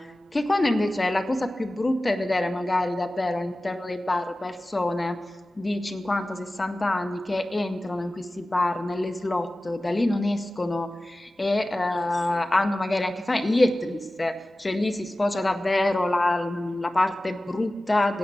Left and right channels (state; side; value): normal; both; correlation 0.96